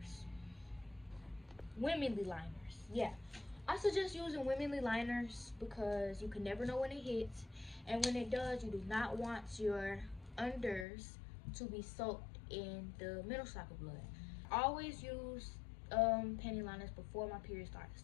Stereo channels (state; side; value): drops out; right; at 10.9 s